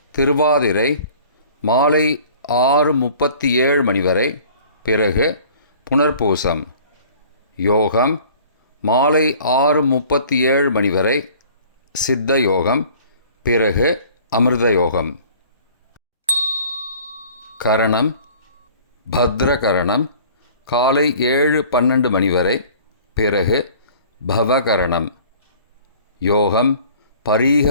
திருவாதிரை, மாலை 6:37 மணி வரை, பிறகு புனர்பூசம். யோகம் மாலை 6:37 மணி வரை, சித்த யோகம், பிறகு அமிர்த யோகம். கரணம் பத்ரகரணம், காலை 7:12 மணி வரை, பிறகு பவகரணம். யோகம் பரீக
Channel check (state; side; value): inverted; both; correlation -0.49